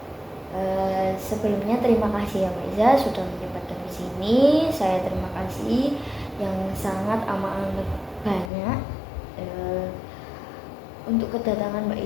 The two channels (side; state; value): right; drops out; at 8.5 s